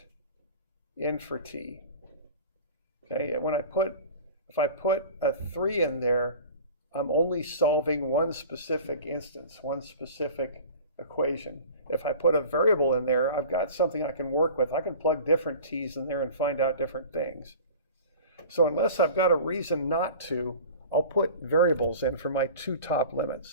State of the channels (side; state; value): both; inverted; correlation -0.39